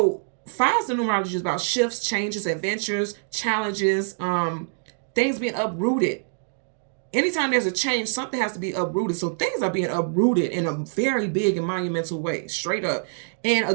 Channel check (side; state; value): left; silent; digital silence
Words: 5 is the numerology, is about shifts, changes, adventures, challenges, things being uprooted. Anytime there's a change, something has to be uprooted. So things are being uprooted in a very big and monumental way, straight up. And